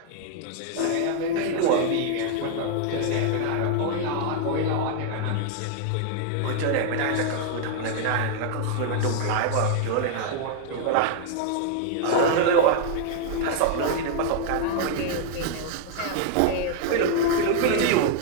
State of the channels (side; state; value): both; different; correlation 0.00